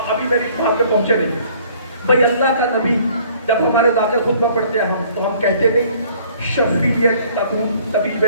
ابھی میری بات پہ پہنچے نہیں. بھئی اللہ کا نبی جب ہمارے داخل خطبہ پڑھتے ہیں تو ہم کہتے نہیں شفیع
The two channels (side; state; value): both; inverted; correlation -0.56